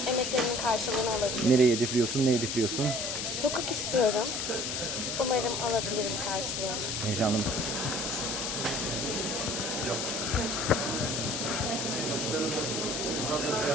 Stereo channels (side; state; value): left; noise; hiss, 2 dB below the sound